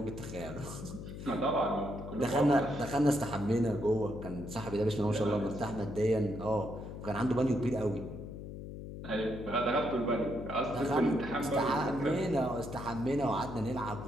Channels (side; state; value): left; noise; hum, 10 dB below the sound